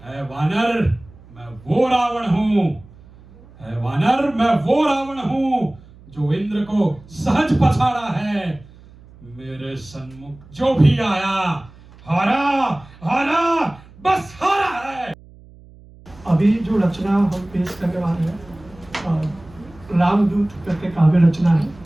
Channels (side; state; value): right; noise; hum, 23 dB below the sound